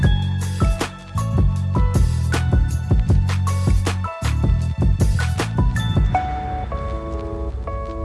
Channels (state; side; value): identical; both; correlation 1.00